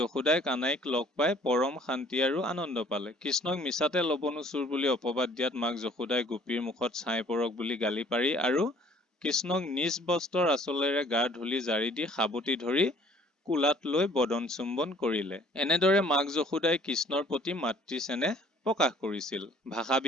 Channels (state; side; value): normal; both; correlation 0.56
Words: কানাইক লগ পাই পৰম শান্তি আৰু আনন্দ পালে। কৃষ্ণক মিছাতে লৱণু চুৰ বুলি অপবাদ দিয়াত মাক যশোদাই গোপীৰ মুখত ছাই পৰক বুলি গালি পাৰি আৰু কৃষ্ণক নিজ বস্ত্ৰৰ আঁচলেৰে গাৰ ধূলি জাৰি দি সাৱটি ধৰি কোলাত লৈ বদন চুম্বন কৰিলে। এনেদৰে মাক যশোদাই কৃষ্ণৰ প্ৰতি মাতৃ চেনেহ প্ৰকাশ কৰিছিল। ভাষা